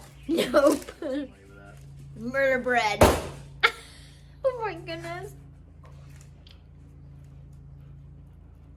Nope. That. Murder bread. Oh my goodness.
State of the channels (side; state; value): both; identical; correlation 1.00